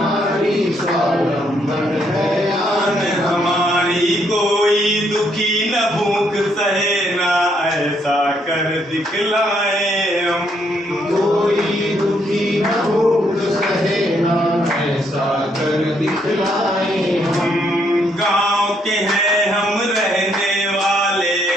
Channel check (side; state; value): both; normal; correlation 0.72